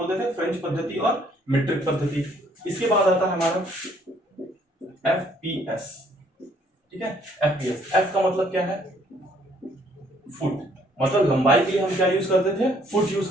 थे, फ्रेंच पद्धति और मीट्रिक पद्धति। इसके बाद आता है हमारा एफपीएस, ठीक है। एफपीएस, एफ का मतलब क्या है, फुट, मतलब लंबाई के लिए हम क्या यूज करते थे, फुट यूज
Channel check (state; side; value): normal; both; correlation 0.64